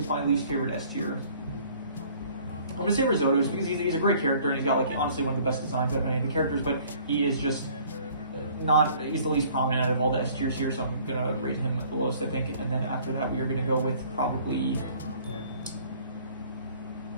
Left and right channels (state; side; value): inverted; both; correlation -0.55